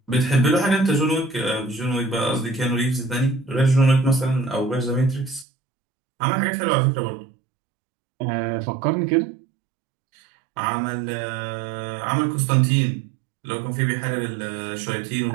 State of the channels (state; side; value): drops out; left; at 5.5 s